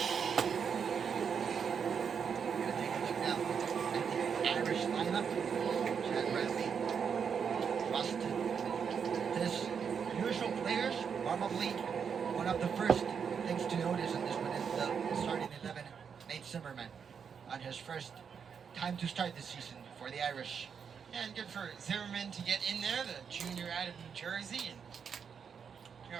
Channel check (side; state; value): left; quieter; 6.8 dB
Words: We're going to take a look now at the Irish lineup. Chad Bradley, Rust, this usual players. Probably one of the first things to notice in this one is the starting 11, Nate Zimmerman, on his first time to start this season for the Irish. Yeah, and good for Zimmerman to get in there, the junior out of New Jersey. And, you